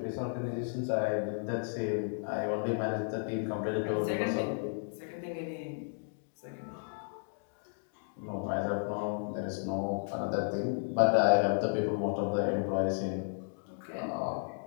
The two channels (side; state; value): right; silent; digital silence